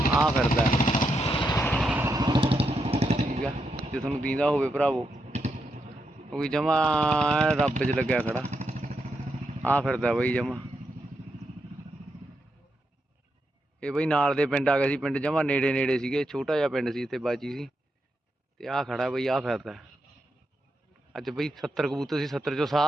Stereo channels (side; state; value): both; normal; correlation 0.83